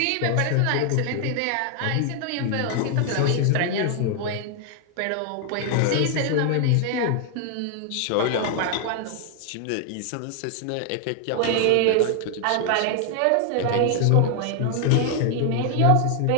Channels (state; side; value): different; both; correlation 0.00